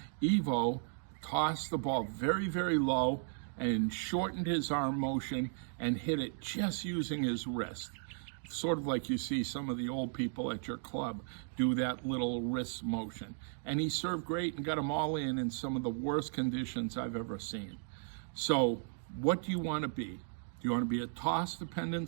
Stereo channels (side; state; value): left; silent; digital silence